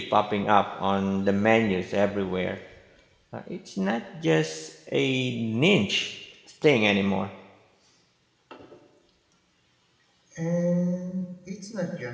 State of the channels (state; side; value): identical; both; correlation 1.00